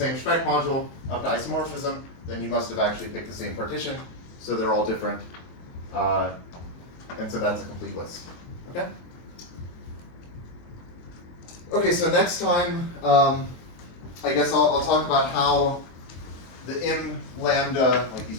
Specht module up to isomorphism, then you must have actually picked the same partition, so they're all different, and so that's a complete list, okay? Okay, so next time, I guess I'll talk about how the im lambda, like these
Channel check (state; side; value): late; right; 23 ms